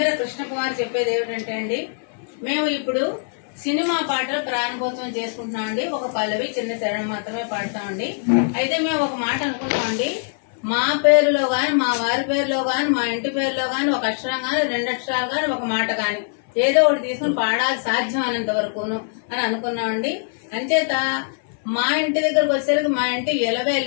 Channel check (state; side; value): silent; right; digital silence